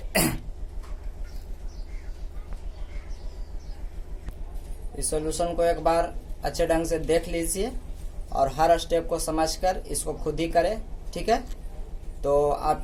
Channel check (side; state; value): both; identical; correlation 1.00